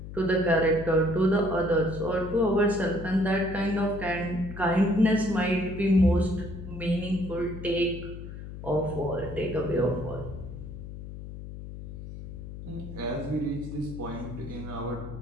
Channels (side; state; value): left; noise; hum, 11 dB below the sound